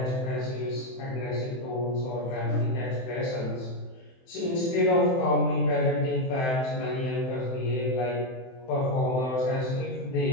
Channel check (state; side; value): late; right; 23 ms